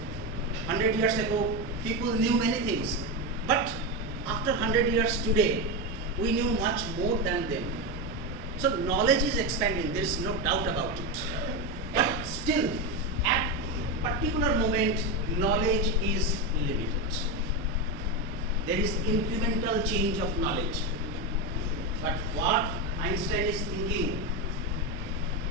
100 years ago, people knew many things. But after 100 years today, we knew much more than them. So knowledge is expanding, there is no doubt about it. But still, at particular moment, knowledge is limited. There is incremental change of knowledge. But what Einstein is thinking,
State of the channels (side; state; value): both; normal; correlation 0.13